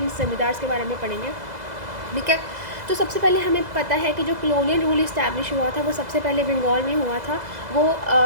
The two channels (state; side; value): late; left; 2.0 ms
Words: ज़मींदार्स के बारे में पढ़ेंगे, ठीक है। तो सबसे पहले हमें पता है कि जो कॉलोनियल रूल इस्टेब्लिश हुआ था वो सबसे पहले बंगाल में हुआ था। वो